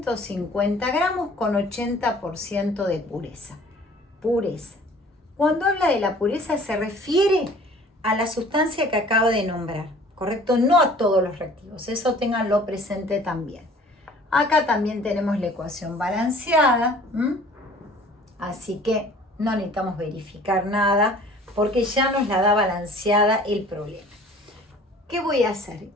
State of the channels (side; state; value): both; normal; correlation 0.50